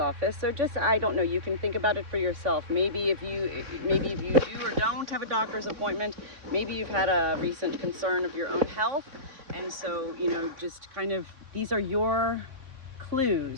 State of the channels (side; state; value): left; late; 3.4 ms